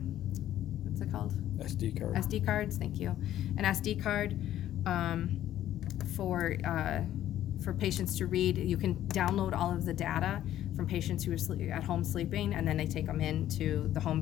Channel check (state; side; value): quieter; right; 12.4 dB